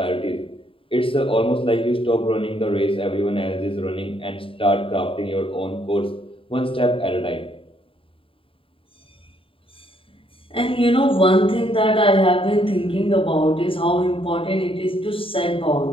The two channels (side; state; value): right; late; 0.26 ms